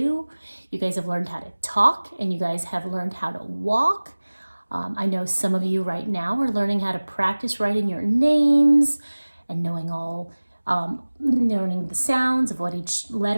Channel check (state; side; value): inverted; both; correlation -1.00